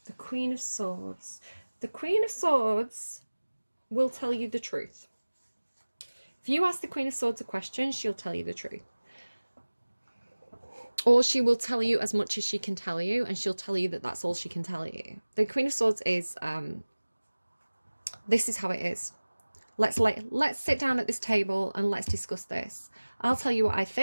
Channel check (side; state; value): both; inverted; correlation -1.00